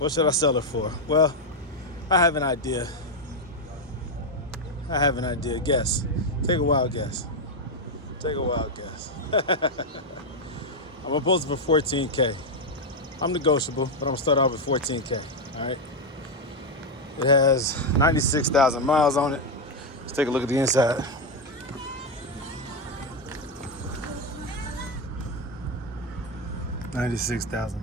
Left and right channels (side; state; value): both; normal; correlation 0.04